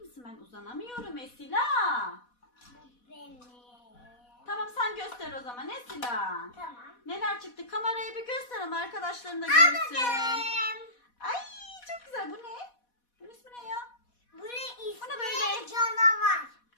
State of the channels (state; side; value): late; right; 4.1 ms